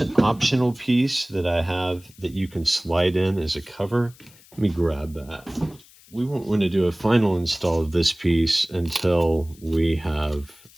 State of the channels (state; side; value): noise; left; hiss, 25 dB below the sound